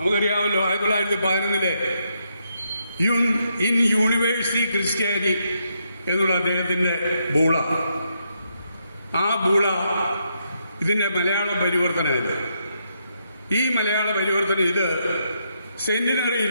1911 ഇൻ യൂണിവേഴ്സിറ്റി ക്രിസ്ത്യാനി എന്നുള്ള അദ്ദേഹത്തിന്റെ ബൂള, ആ ബൂള ഇതിന്റെ മലയാള പരിവർത്തനമില്ല. ഈ മലയാള പരിവർത്തനം ഇത്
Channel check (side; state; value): both; inverted; correlation -0.79